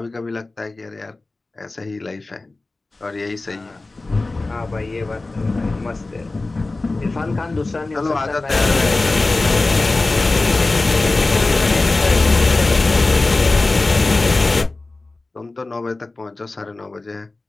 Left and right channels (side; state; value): right; quieter; 3.2 dB